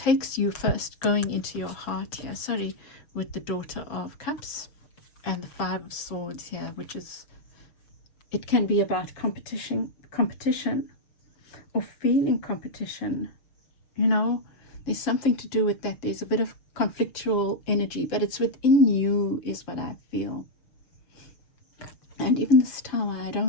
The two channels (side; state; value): right; late; 6.5 ms